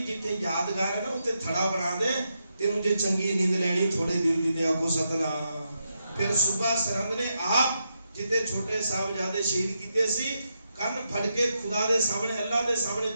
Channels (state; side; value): inverted; both; correlation -0.84